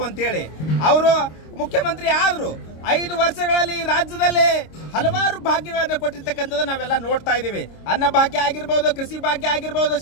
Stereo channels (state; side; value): late; right; 26 ms